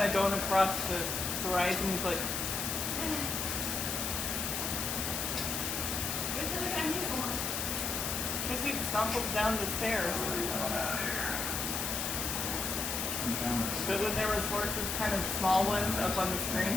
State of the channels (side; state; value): left; noise; hiss, 1 dB below the sound